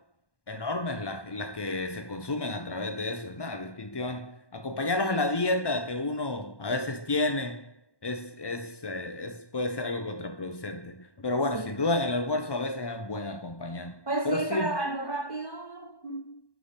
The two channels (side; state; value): right; late; 1.1 ms